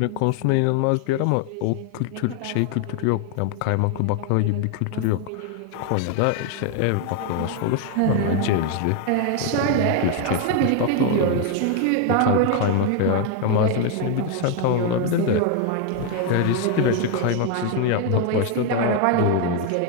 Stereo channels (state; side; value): different; both; correlation 0.01